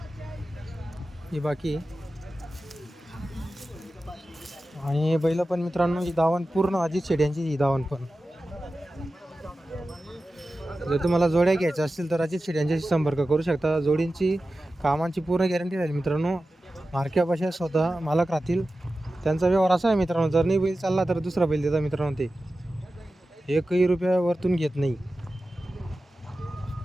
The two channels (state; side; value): normal; both; correlation 0.94